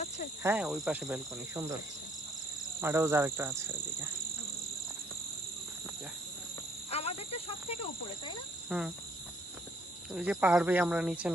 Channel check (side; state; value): both; normal; correlation 0.65